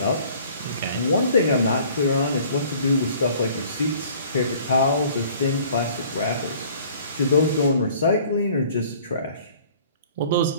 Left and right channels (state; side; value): inverted; both; correlation -0.53